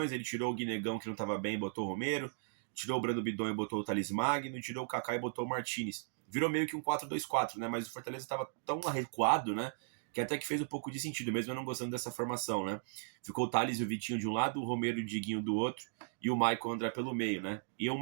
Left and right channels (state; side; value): silent; left; digital silence